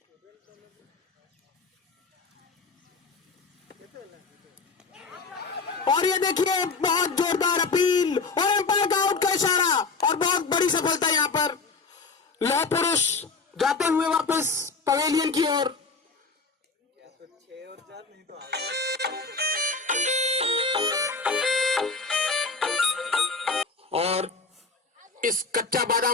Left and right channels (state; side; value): quieter; right; 4.3 dB